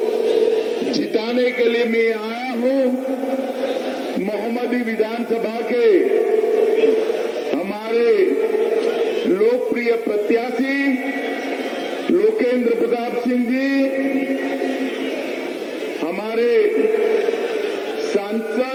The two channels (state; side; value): identical; both; correlation 1.00